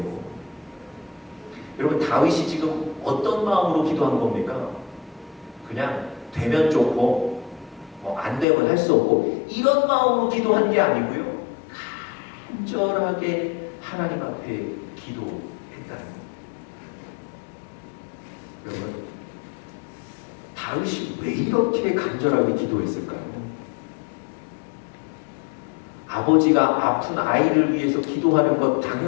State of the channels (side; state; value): right; drops out; at 8.5 s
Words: 여러분, 다윗이 지금 어떤 마음으로 기도한 겁니까? 그냥 되면 좋고 안 되면 할 수 없고 이런 마음으로 기도한 게 아니고요, 간절하게 하나님 앞에 기도했다는 겁니다. 여러분, 다윗이 왜 이렇게 간절하게 기도했을까요? 아버지가 아픈 아이를 위해서 기도하는 것